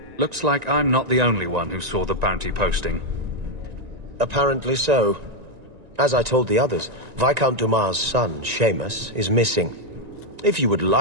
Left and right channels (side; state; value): left; late; 1.9 ms